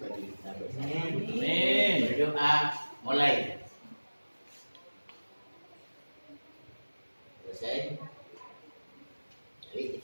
kita bersama. Amin. Berdoa mulai. Selesai. Jadi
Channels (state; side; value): inverted; both; correlation -1.00